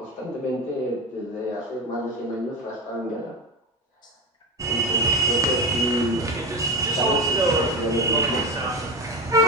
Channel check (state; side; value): normal; both; correlation 0.21